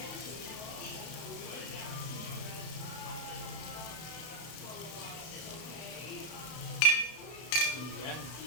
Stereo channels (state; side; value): late; right; 32 ms